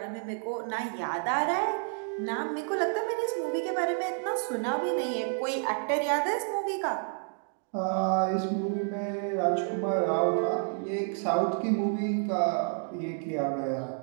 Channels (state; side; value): silent; left; 58 dB below the other